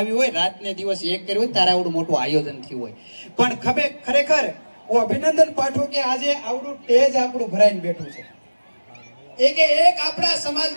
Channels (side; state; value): both; inverted; correlation -1.00